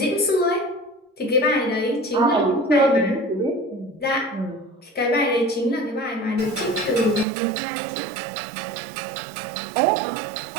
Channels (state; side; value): drops out; left; at 7.2 s